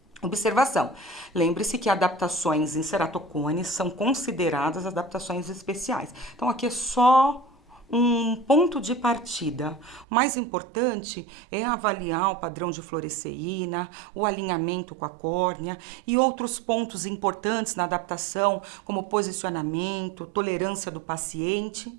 Observação, lembre-se que adaptações em ceratocones são consideradas adaptações especiais. Então, aqui é só um ponto de partida. O mais importante é avaliar o padrão de fluoresceína, o alinhamento com a córnea e outros pontos importantes na adaptação, como posicionamento, tolerância do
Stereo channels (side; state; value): left; drops out; at 10.1 s